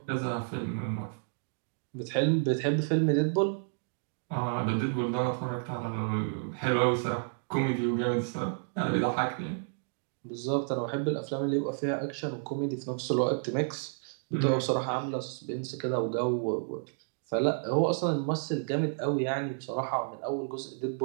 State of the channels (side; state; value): left; silent; digital silence